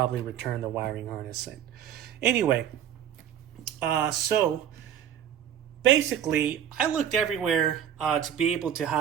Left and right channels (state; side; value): quieter; left; 9.7 dB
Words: return the wiring harness in. Anyway, so basically I looked everywhere to be able